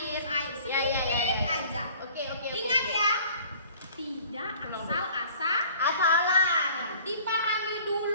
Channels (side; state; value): both; inverted; correlation -0.50